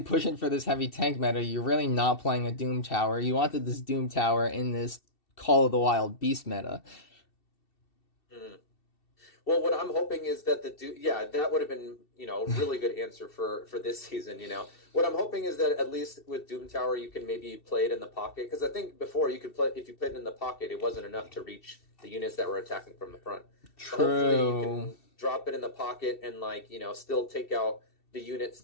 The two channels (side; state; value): right; late; 2.7 ms